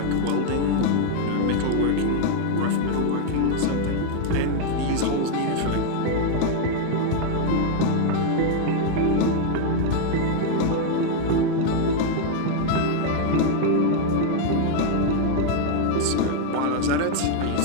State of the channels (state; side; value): different; both; correlation 0.00